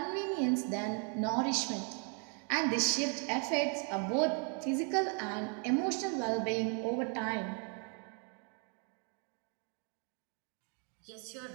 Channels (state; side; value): quieter; left; 38.2 dB